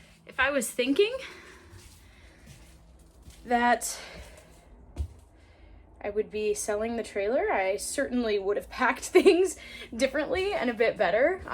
If I was thinking that I would be selling the trailer, I certainly would have packed things differently and a bit better.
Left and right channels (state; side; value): identical; both; correlation 1.00